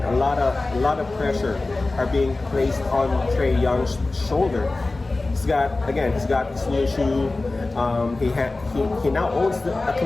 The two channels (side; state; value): right; quieter; 3.2 dB